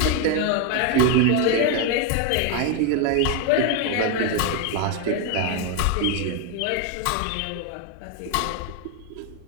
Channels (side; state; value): both; different; correlation 0.01